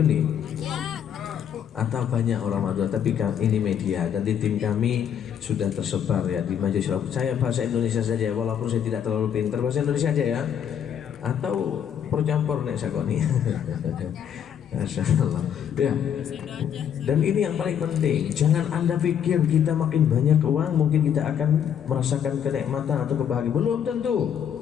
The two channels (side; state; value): right; quieter; 8.8 dB